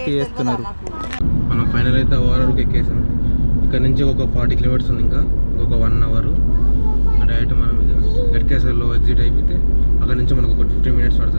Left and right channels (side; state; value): both; inverted; correlation -1.00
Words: చేస్తున్నారు. మనం ఫైనల్ అయితే ఓవరాల్కి ఎక్కేసాం. ఇక్కడ నుంచి ఒక 40 kilometers ఉంది, ఇంకా ఇంకొక 1 hour. డైరెక్ట్ మనం ఇక గట్కేసర్లో ఎగ్జిట్ అయిపోతే అక్కడ నుంచి మనకు ఒక 15 minutes